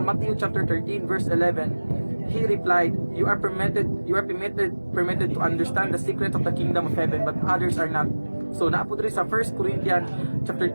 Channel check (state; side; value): inverted; both; correlation -1.00